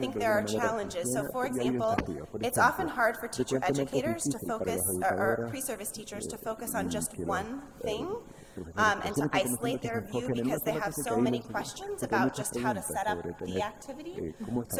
de alguna manera funciona, y hay desafíos. Por ejemplo, frecuentemente es difícil para las educadoras y que los profesores que recién están comenzando que se enfoquen en una sola cosa y que aíslen porque hay muchas preguntas sobre tener cómo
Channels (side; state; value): both; identical; correlation 1.00